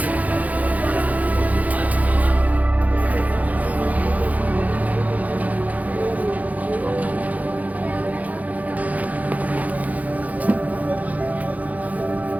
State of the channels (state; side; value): late; left; 0.075 ms